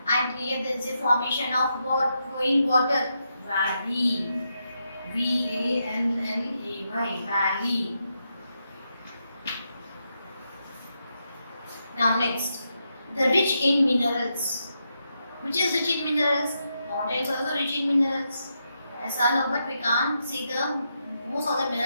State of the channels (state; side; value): inverted; both; correlation -0.83